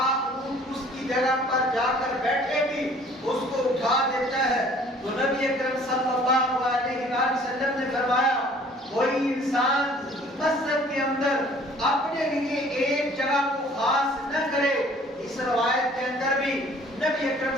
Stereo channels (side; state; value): both; normal; correlation 0.54